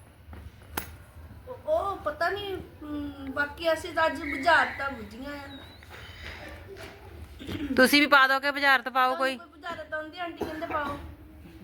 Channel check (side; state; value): both; identical; correlation 1.00